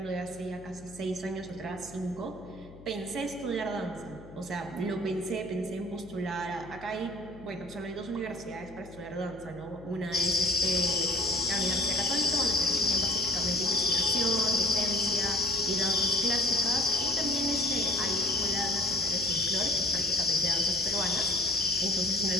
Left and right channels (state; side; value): noise; left; hum, 19 dB below the sound